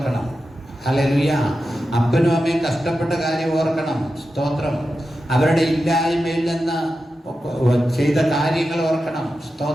ഹല്ലേലൂയ. അപ്പനും അമ്മയും കഷ്ടപ്പെട്ട കാര്യം ഓർക്കണം. സ്തോത്രം. അവരുടെ ഇല്ലായ്മയിൽ നിന്ന് ചെയ്ത കാര്യങ്ങൾ ഓർക്കണം.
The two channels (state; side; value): normal; both; correlation 0.91